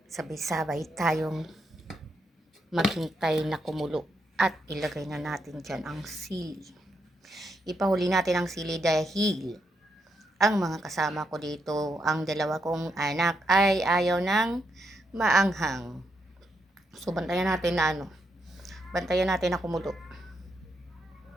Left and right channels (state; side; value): normal; both; correlation 0.80